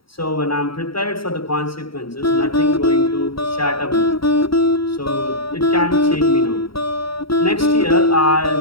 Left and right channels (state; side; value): late; right; 0.75 ms